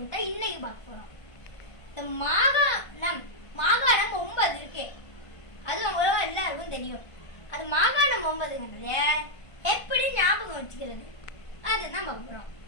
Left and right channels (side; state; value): right; late; 1.5 ms